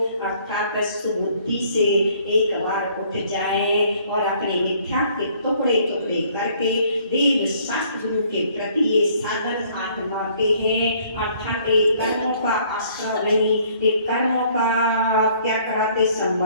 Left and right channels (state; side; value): inverted; both; correlation -0.60